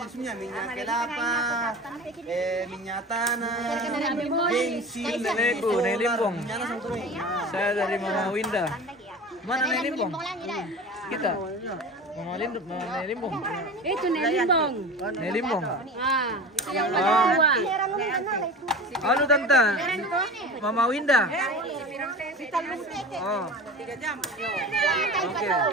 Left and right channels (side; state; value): both; normal; correlation 0.34